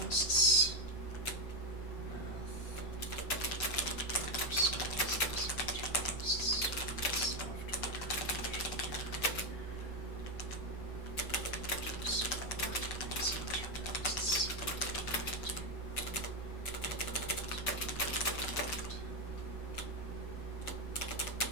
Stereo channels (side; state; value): right; late; 6.7 ms